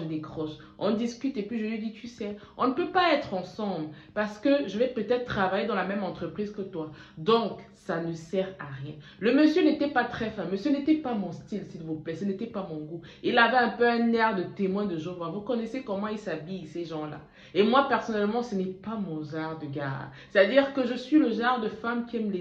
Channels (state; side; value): identical; both; correlation 1.00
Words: décroche. On discute et puis je lui dis, tu sais, on ne peut pas être ensemble parce que je vais peut-être travailler dans la même entreprise que toi. Donc, ça ne sert à rien. Le monsieur n'était pas très fameux, ce n'était pas mon style, s'il vous plaît, ce n'était pas mon goût. Il avait un peu un air de témoin de Jéhovah. Vous connaissez comment ils s'habillent, ces gens-là. Et moi, personnellement, ce n'est pas mon genre de gars. C'est-à-dire que je suis le genre de femme qui aime